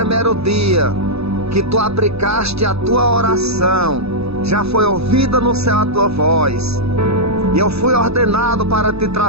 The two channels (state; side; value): late; left; 0.79 ms